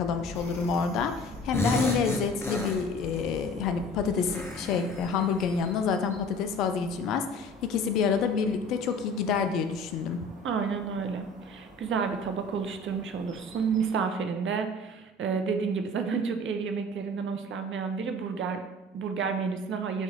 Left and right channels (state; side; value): normal; both; correlation 0.44